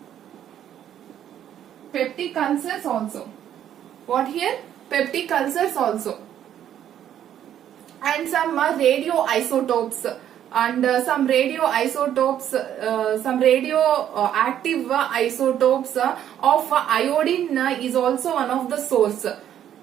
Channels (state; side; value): quieter; left; 10.5 dB